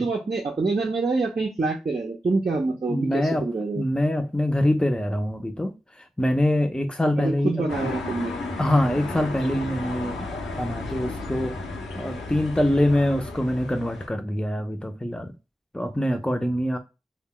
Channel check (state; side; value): normal; both; correlation 0.91